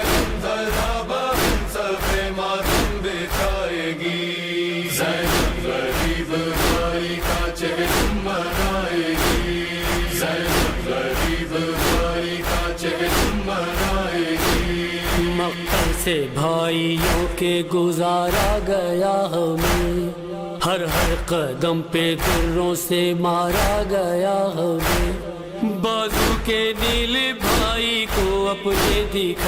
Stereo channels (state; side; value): identical; both; correlation 1.00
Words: غمزدہ بہن صفے ماتم بچھائے گی، زینب غریب بھائی کا چہر منائے گی، زینب غریب بھائی کا چہر منائے گی۔ مقتل سے بھائیوں کے گزارا گیا ہمیں، ہر ہر قدم پہ دروں سے مارا گیا ہمیں، بازو کے نیل بھائی کو اپنے